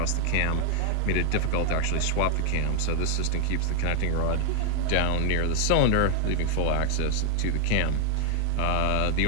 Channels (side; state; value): both; different; correlation 0.00